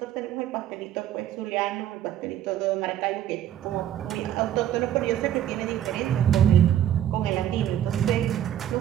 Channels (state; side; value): quieter; left; 11.2 dB